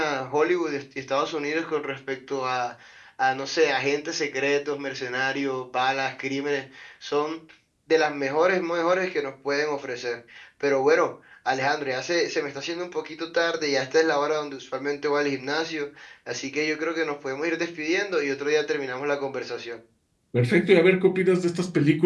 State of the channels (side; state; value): both; identical; correlation 1.00